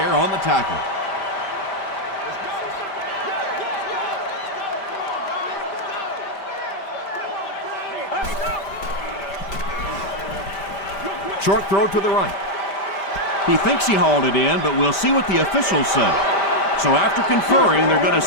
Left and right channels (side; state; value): right; late; 5.1 ms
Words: on the tackle. Short throw to the right. He thinks he hauled it in, but we'll see what the officials say. So after conferring, they're going to